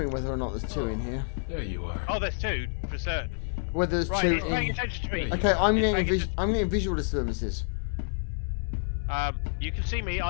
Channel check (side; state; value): right; silent; 59 dB below the other